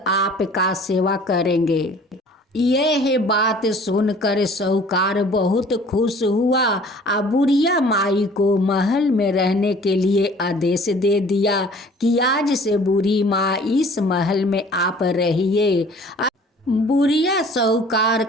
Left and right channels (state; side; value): normal; both; correlation 0.51